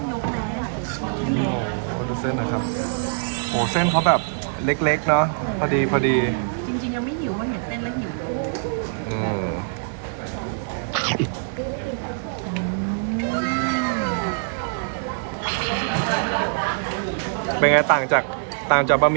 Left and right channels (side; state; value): left; silent; digital silence